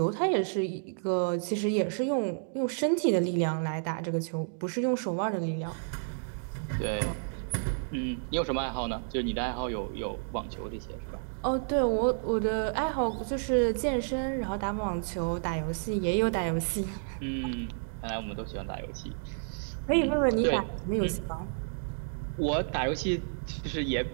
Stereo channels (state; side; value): silent; left; digital silence